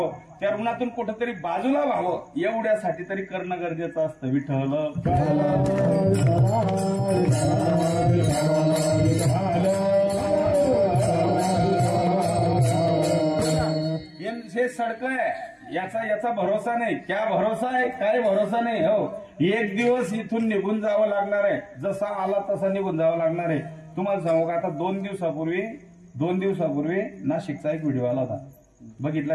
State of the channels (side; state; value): both; identical; correlation 1.00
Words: त्या ऋणातून कुठेतरी बाजूला व्हावं, एवढ्यासाठी तरी करणं गरजेचं असतं. विठ्ठल हे सडक आहे, याचा भरोसा नाही. क्या भरोसा आहे? काय भरोसा नाही. हो, एक दिवस इथून निघून जावं लागणार आहे. जसा आला तसा निघून जावं लागणार आहे. तुम्हाला सांगू का, आता 2 दिवसापूर्वी नाशिकचा एक व्हिडिओ आला होता. बघितला